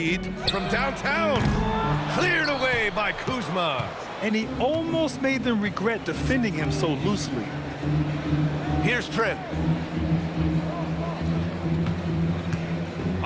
from downtown. Cleared away by Kuzma. And he almost made them regret defending him so loosely. Here's Trent.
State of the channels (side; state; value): both; identical; correlation 1.00